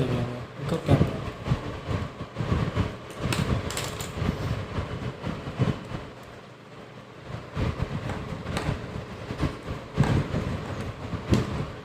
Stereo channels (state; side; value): identical; both; correlation 1.00